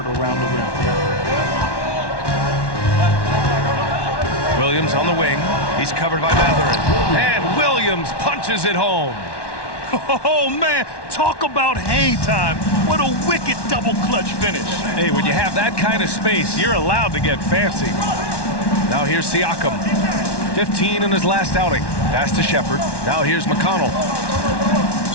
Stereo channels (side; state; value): right; late; 1.1 ms